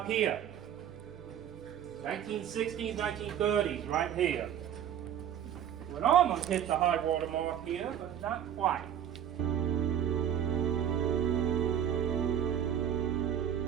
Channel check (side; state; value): left; quieter; 9.8 dB